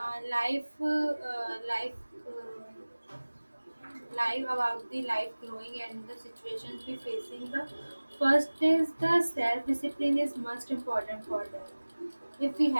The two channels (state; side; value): inverted; both; correlation -1.00